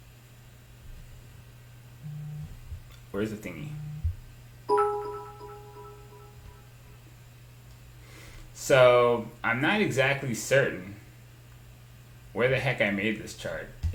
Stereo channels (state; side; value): identical; both; correlation 1.00